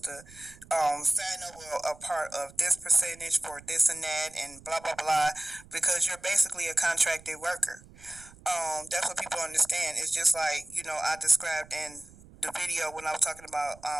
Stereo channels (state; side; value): noise; right; rumble, 22 dB below the sound